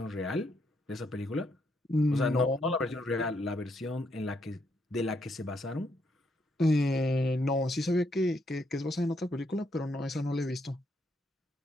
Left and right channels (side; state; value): both; normal; correlation 0.76